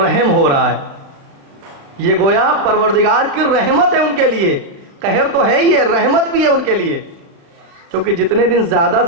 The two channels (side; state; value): left; late; 36 ms